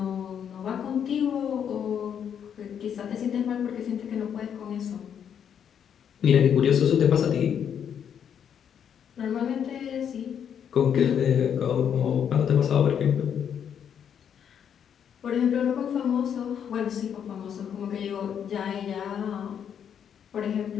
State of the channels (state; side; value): quieter; right; 8.4 dB